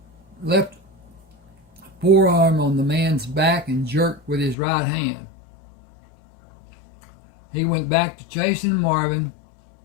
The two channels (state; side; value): drops out; right; at 4.5 s